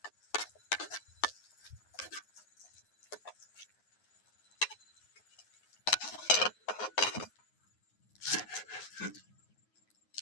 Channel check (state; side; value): late; right; 9.5 ms